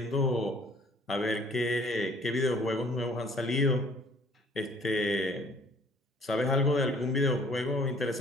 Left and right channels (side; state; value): both; normal; correlation 0.56